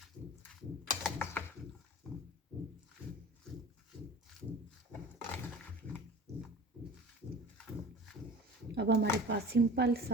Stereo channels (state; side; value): normal; both; correlation 0.40